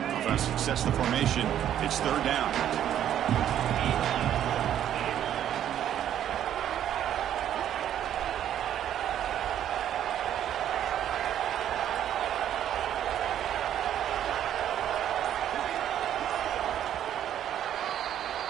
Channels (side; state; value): left; quieter; 10.7 dB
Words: Offense sets the formation. It's third down.